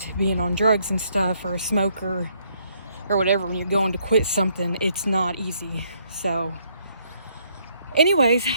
being on drugs and stuff, or a smoker or whatever. When you're going to quit something, it's not easy. So anyways,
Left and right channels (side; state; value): both; inverted; correlation -0.70